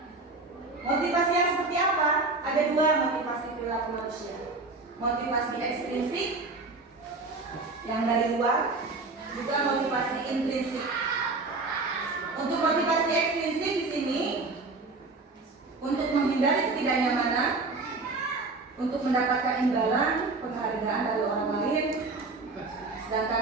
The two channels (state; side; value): quieter; left; 3.6 dB